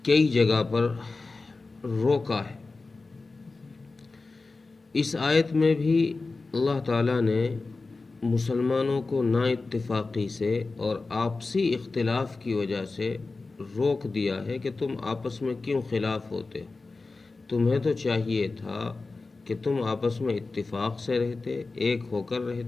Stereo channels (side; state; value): right; quieter; 3.7 dB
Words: کئی جگہ پر روکا ہے۔ اس آیت میں بھی اللہ تعالیٰ نے مسلمانوں کو نا اتفاقی سے اور آپسی اختلاف کی وجہ سے روک دیا ہے کہ تم آپس میں کیوں خلاف ہوتے ہو۔ تمہیں تو چاہیے تھا کہ تم آپس میں اتفاق سے رہتے، ایک ہو کر